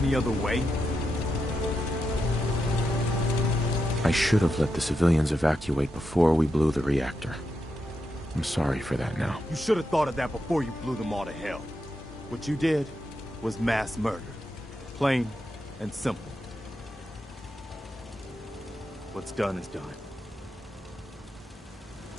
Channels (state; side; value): normal; both; correlation 0.86